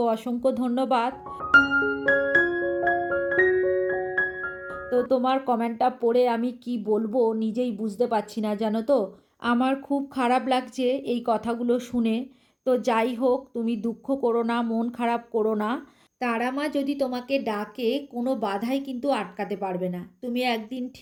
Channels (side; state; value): both; identical; correlation 1.00